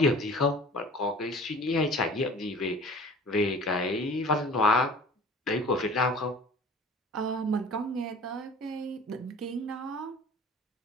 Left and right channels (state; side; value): normal; both; correlation 0.45